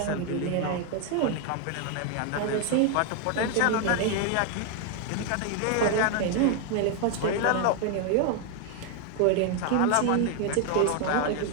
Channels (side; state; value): both; different; correlation 0.01